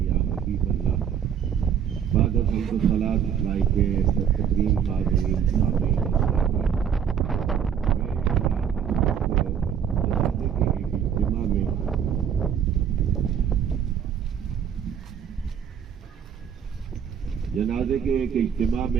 या हबीबल्लाह। बाद हम्द सलात लाइके तकरीम हाज़रीन सामीन जनाजे के एक इज्तिमा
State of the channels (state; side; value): quieter; left; 8.2 dB